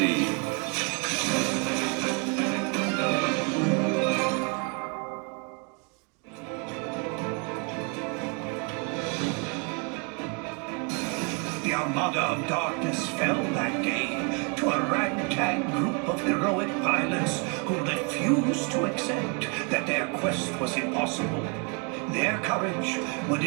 The Armada of Darkness fell that day to a ragtag group of heroic pilots who refused to accept that their quest was impossible. Their courage would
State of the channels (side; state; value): left; quieter; 35.2 dB